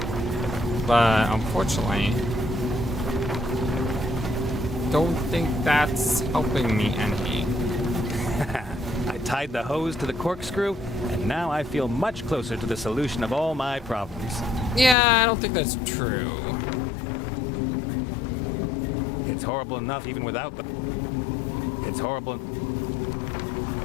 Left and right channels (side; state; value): right; drops out; at 15.0 s